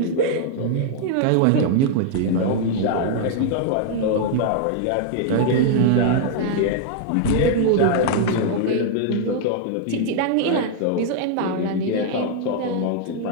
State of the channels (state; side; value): different; both; correlation -0.01